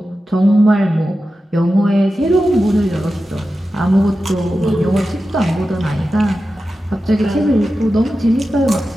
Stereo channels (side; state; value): both; normal; correlation 0.92